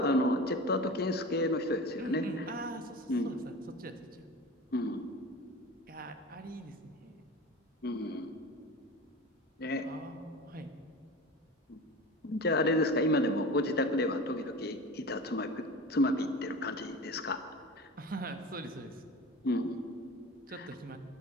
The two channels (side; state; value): both; normal; correlation 0.33